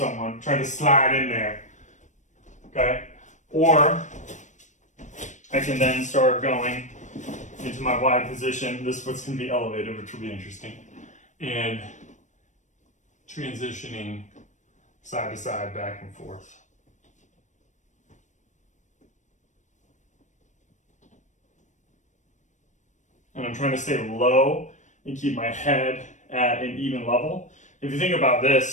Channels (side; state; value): right; late; 0.35 ms